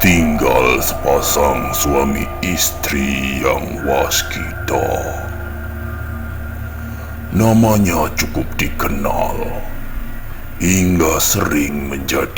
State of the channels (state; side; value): identical; both; correlation 1.00